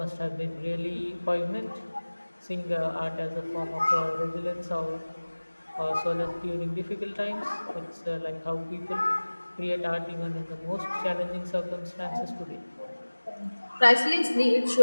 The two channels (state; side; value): inverted; both; correlation -1.00